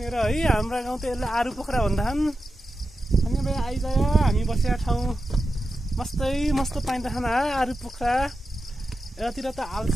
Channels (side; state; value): both; normal; correlation 0.91